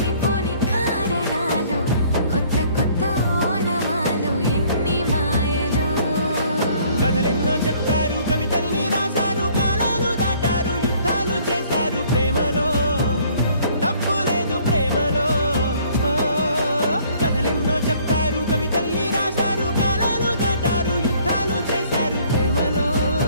కారణాలు, కొత్త కొత్త ఓనమాలు, ఎన్ని మాయలు. కథలెన్నో చెప్పారు, కవితల్ని రాశారు, కాలాలు దాటారు, యుద్ధాలు చేశారు ప్రేమలో. తప్పు లేదు ప్రేమలో. కథలెన్నో చెప్పారు, కవితల్ని రాశారు, కాలాలు దాటారు, యుద్ధాలు చేశారు ప్రేమలో.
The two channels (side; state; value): both; inverted; correlation -0.59